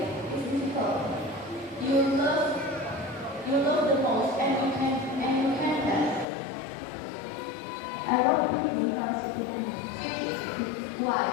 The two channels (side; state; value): right; drops out; at 6.2 s